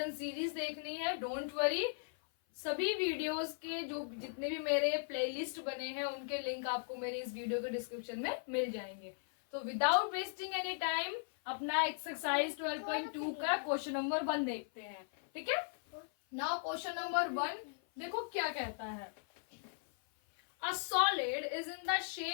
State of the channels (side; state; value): right; silent; 53 dB below the other